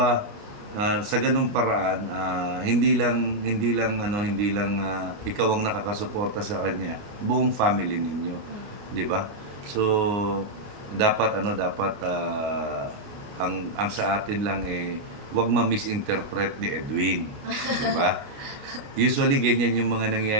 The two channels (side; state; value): left; late; 29 ms